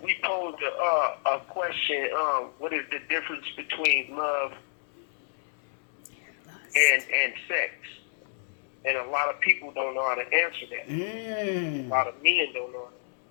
we posed a question. What is the difference between love and sex? And a lot of people don't know how to answer that. A lot of men don't know.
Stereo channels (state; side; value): silent; right; 59 dB below the other